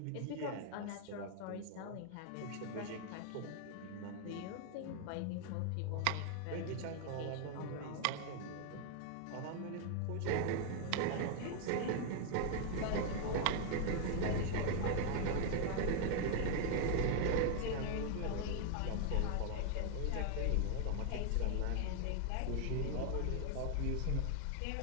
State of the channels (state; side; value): different; both; correlation 0.00